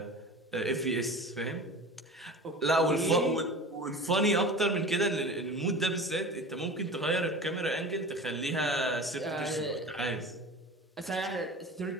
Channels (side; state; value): both; normal; correlation 0.35